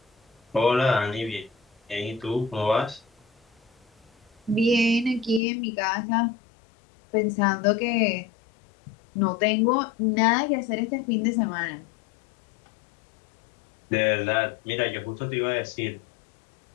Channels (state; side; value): drops out; right; at 5.4 s